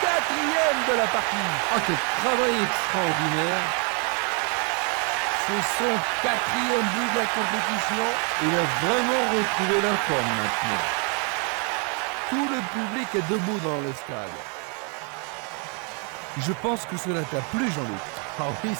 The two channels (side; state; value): left; quieter; 37.1 dB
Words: 4e de la partie. Ah, quel travail extraordinaire. C'est son 4e but de la compétition. Il a vraiment retrouvé la forme maintenant. Tout le public est debout dans le stade. Je pense que cela t'a plu, Jean-Luc. Ah oui,